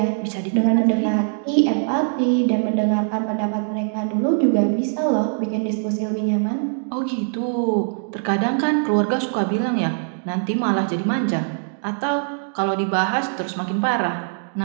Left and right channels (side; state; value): left; silent; digital silence